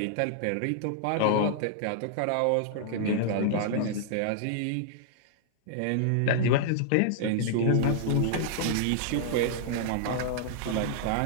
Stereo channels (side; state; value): both; different; correlation -0.01